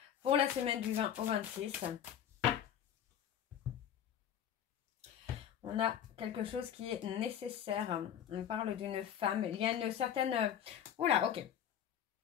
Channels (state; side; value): quieter; right; 9.7 dB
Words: Pour la semaine du 20 au 26. On a quelque chose qui est nécessaire. On parle d'une femme. Il y a une certaine... Oula, ok.